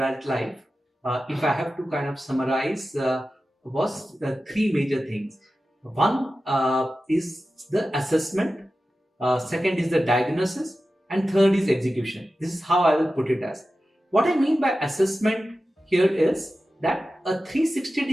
if I have to kind of summarize, was three major things. One is the assessment, second is the diagnosis, and third is execution. This is how I will put it as. What I mean by assessment here is that a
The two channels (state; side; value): normal; both; correlation 0.93